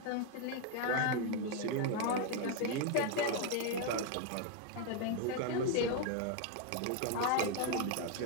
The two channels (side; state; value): both; different; correlation 0.01